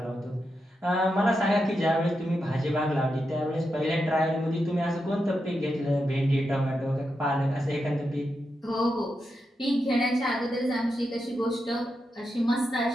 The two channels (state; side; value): normal; both; correlation 0.86